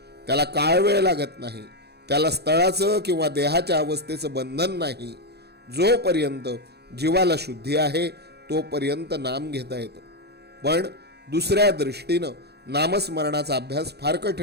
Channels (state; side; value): late; left; 0.48 ms